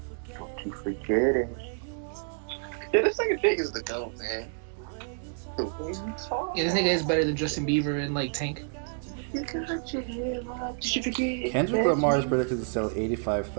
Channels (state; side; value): silent; left; digital silence